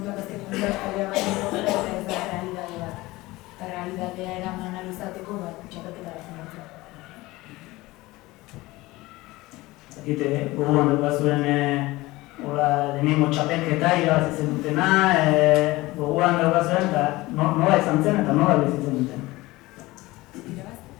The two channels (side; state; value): right; quieter; 19.9 dB